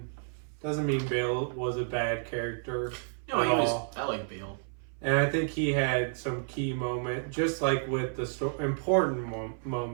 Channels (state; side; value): silent; left; 57 dB below the other